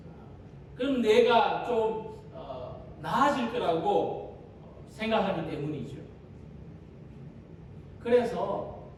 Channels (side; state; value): both; identical; correlation 1.00